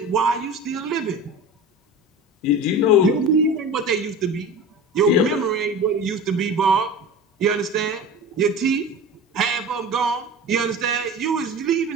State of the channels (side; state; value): both; normal; correlation 0.33